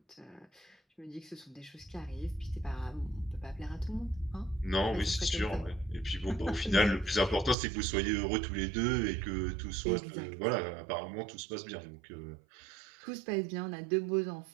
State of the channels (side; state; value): left; drops out; at 7.6 s